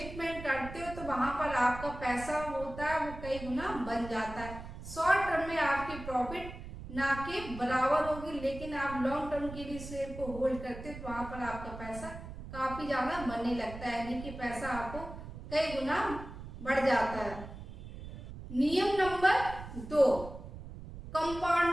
करते हो तो वहां पर आपका पैसा होता है वो कई गुना बन जाता है। शॉर्ट टर्म में आपकी प्रॉफिट ना के बराबर होगी, लेकिन आप लॉन्ग टर्म के लिए शेयर को होल्ड करते हो तो वहां पर आपका पैसा काफी ज्यादा बनने लगता है, यानी कि पैसा आपको कई गुना बढ़ जाता है। नियम नंबर 2,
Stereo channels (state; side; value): noise; right; rumble, 12 dB below the sound